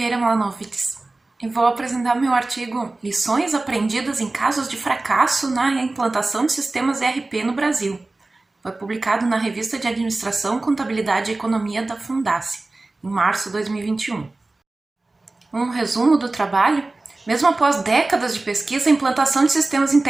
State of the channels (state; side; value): quieter; left; 3.1 dB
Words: Mlanovitz e vou apresentar meu artigo Lições aprendidas em casos de fracasso na implantação de sistemas ERP no Brasil. Foi publicado na Revista de Administração, Contabilidade e Economia da Fundace, em março de 2021. Um resumo do trabalho: mesmo após décadas de pesquisa, a implantação de sistemas